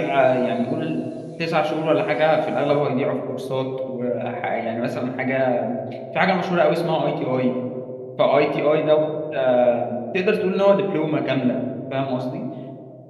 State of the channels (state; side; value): identical; both; correlation 1.00